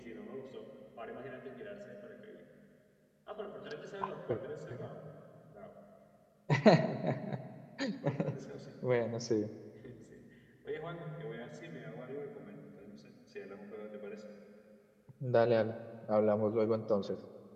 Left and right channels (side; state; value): both; identical; correlation 1.00